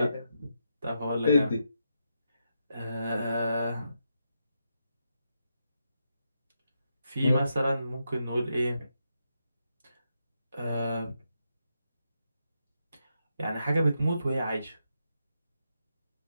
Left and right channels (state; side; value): inverted; both; correlation -0.83